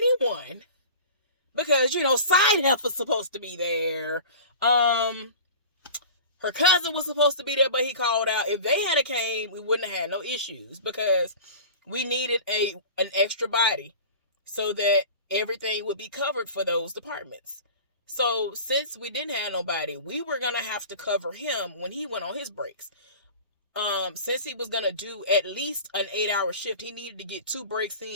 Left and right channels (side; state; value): both; inverted; correlation -0.38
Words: because, side heifer's supposed to be there. Her cousin was supposed to be there, but he called out. If they had came, we wouldn't have had no issues because we needed an extra body so that everything would be covered for those departments. So since we didn't have nobody, we were gonna have to cover him when he went on his breaks. Since he was gonna do at least an 8-hour shift, he needed to get 2 breaks